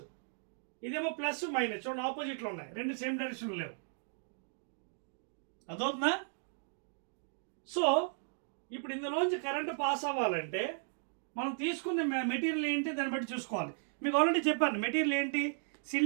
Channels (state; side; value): silent; left; digital silence